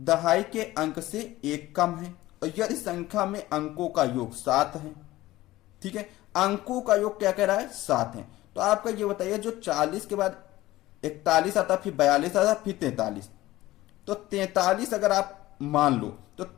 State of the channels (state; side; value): quieter; right; 17.0 dB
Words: के अंक से एक कम है और यदि संख्या में अंकों का योग 7 है। ठीक है, अंकों का योग क्या कह रहा है, 7 है। तो आपका ये बताइए, जो 40 के बाद 41 आता, फिर 42 आता, फिर 43, तो 43 अगर आप मान लो तो